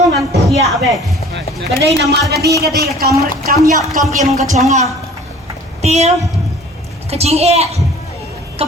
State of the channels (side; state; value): both; normal; correlation 0.48